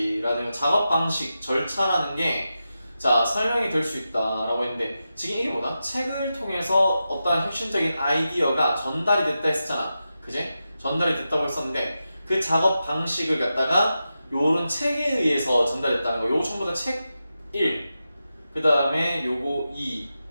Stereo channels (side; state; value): both; inverted; correlation -0.90